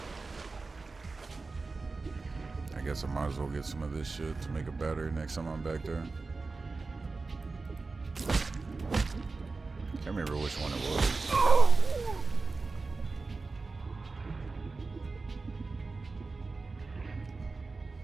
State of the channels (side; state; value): left; quieter; 3.9 dB